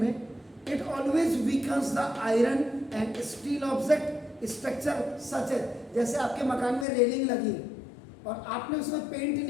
it always weakens the iron and steel object structure such है, जैसे आपके मकान में रेलिंग लगी, और आपने उसमें पेंट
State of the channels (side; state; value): right; drops out; at 6.9 s